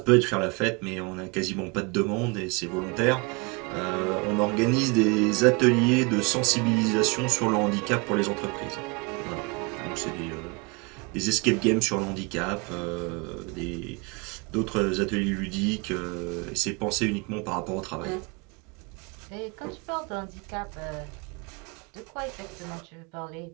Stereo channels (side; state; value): left; quieter; 29.3 dB